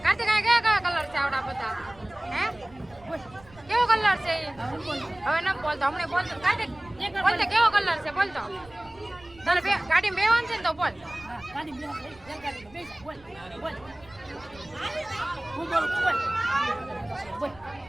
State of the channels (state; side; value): noise; right; rumble, 24 dB below the sound